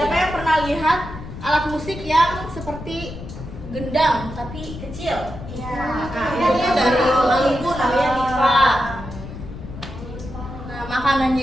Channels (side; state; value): left; noise; rumble, 11 dB below the sound